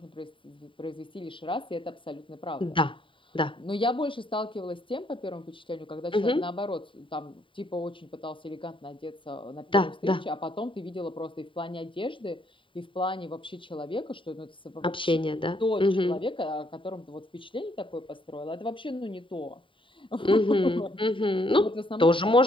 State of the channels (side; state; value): right; late; 0.25 ms